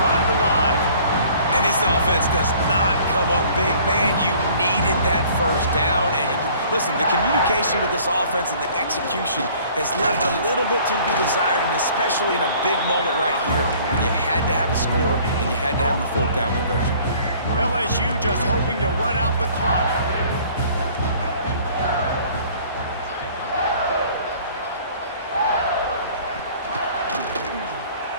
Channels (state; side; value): inverted; both; correlation -0.53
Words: alive. And this offense does not come up big. Man, you needed that 1st down. And listen, the communication with this offense and the execution has left a little bit to be desired, and especially in a big moment right here when you had to have a score and you had to have the 4th down conversion. LSU just hoping to run out the clock.